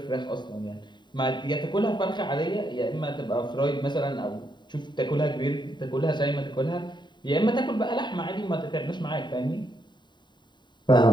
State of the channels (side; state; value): right; late; 0.22 ms